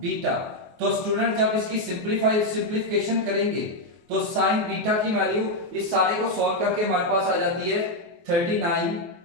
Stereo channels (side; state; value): left; late; 23 ms